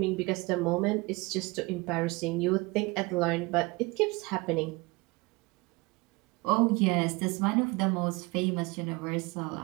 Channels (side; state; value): left; quieter; 24.8 dB